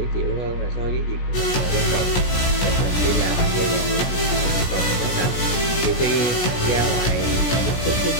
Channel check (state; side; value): late; right; 17 ms